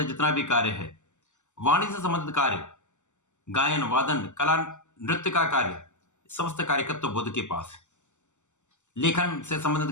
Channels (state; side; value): late; right; 0.84 ms